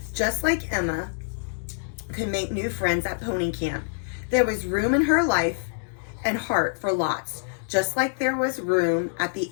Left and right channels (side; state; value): right; silent; digital silence